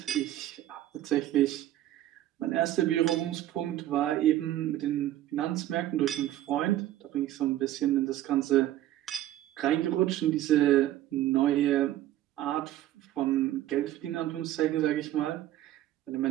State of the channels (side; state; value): left; quieter; 13.6 dB